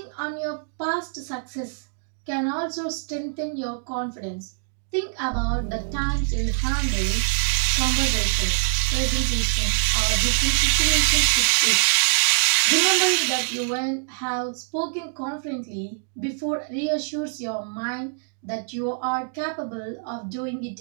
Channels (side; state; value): left; silent; 62 dB below the other